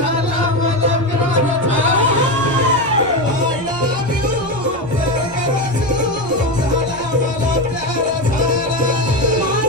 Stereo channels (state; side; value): noise; right; rumble, 20 dB below the sound